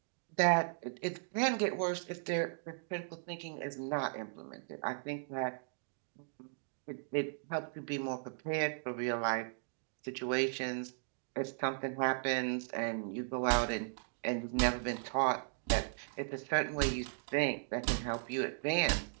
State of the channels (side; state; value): left; silent; digital silence